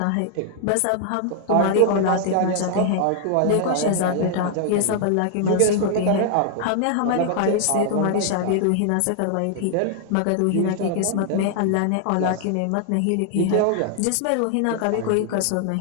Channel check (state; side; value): different; both; correlation 0.00